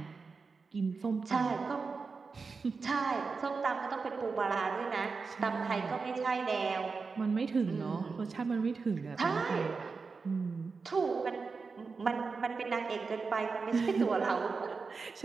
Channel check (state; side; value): quieter; left; 4.7 dB